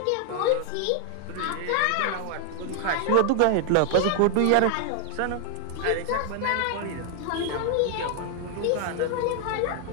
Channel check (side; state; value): both; different; correlation 0.00